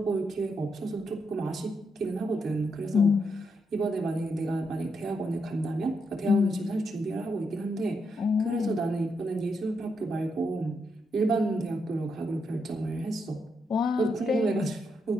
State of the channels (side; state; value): both; normal; correlation 0.81